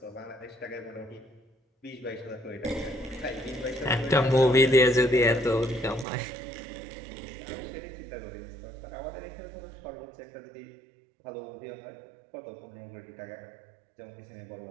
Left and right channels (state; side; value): drops out; left; at 6.1 s